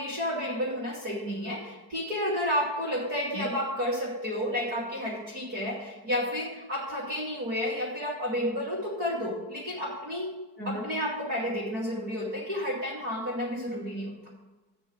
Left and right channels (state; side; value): late; left; 4.6 ms